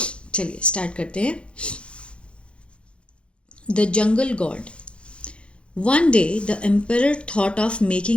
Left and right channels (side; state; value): right; late; 0.059 ms